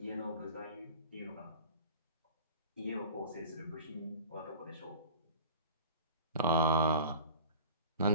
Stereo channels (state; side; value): inverted; both; correlation -0.38